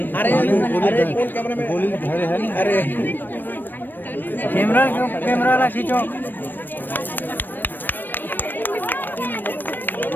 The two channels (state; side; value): late; right; 0.092 ms